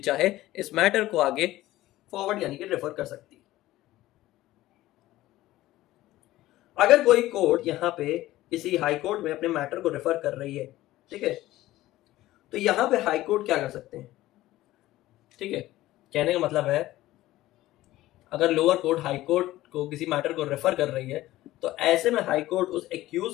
चाहे इस मैटर को आगे फॉरवर्ड यानी कि रेफर कर सकती है। अगर कोई कोर्ट यहाँ पे किसी हाई कोर्ट में अपने मैटर को रेफर कर रही है, ठीक है, तो यहां पे हाई कोर्ट क्या कर सकते हैं, ठीक है। कहने का मतलब है अगर लोअर कोर्ट हाई कोर्ट को किसी मैटर को रेफर कर रही है तो ऐसे में हाई कोर्ट उस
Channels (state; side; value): quieter; right; 16.1 dB